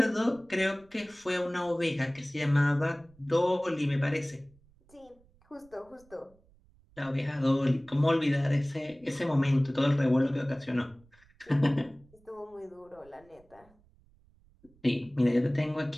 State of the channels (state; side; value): noise; right; rumble, 30 dB below the sound